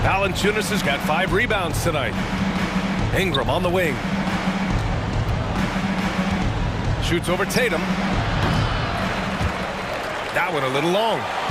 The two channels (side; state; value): both; identical; correlation 1.00